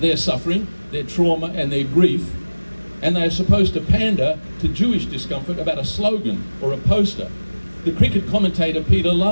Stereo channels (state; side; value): inverted; both; correlation -1.00